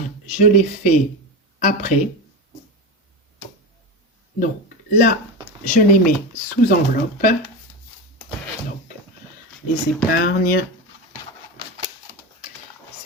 je les fais après. Donc, là, je les mets sous enveloppe. Donc, les épargnes,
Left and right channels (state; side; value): normal; both; correlation 0.21